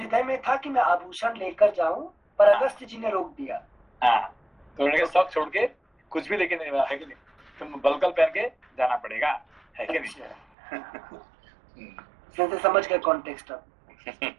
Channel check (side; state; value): left; drops out; at 10.5 s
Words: में था कि मैं आभूषण लेकर जाऊं, पर अगस्त्य जी ने रोक दिया। हाँ, तो उन्होंने सब छोड़ के कुछ भी लेके नहीं, है कि नहीं, तुम बलकल पहन के जाना पड़ेगा, है कि नहीं। समझ गए कॉन्टेक्स्ट अब।